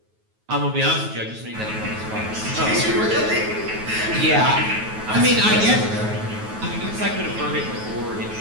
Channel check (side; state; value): left; late; 9.3 ms